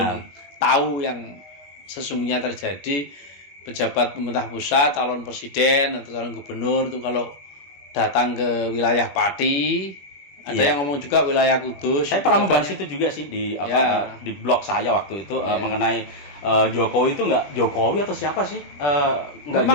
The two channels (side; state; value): right; late; 21 ms